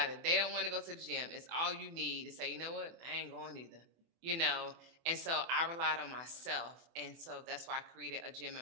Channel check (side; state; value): left; late; 24 ms